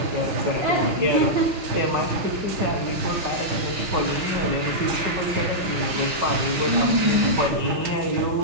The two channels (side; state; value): left; late; 5.8 ms